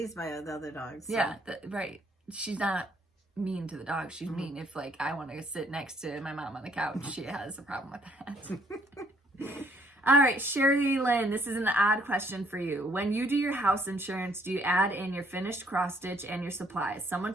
by the other dogs. So. Yeah, right. She's not mean to the dog. She's mean if like I want to sit next to my mom on the couch. She has a problem with that. All right, Shirley Lynn, this is an odd question for you. When you do your house insurance, do you add in your finished cross stitch and your supplies? Someone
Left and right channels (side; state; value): both; normal; correlation 0.65